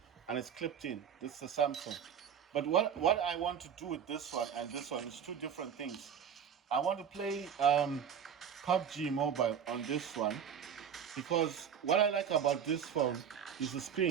And it's clipped in. This is a Samsung. But what I want to do with this one and this one is two different things. I want to play PUBG Mobile on this one, because what I like about this phone is the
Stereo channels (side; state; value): left; quieter; 8.0 dB